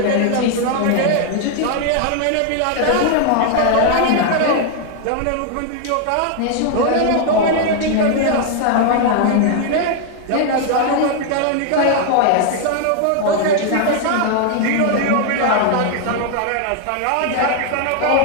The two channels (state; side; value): different; both; correlation 0.00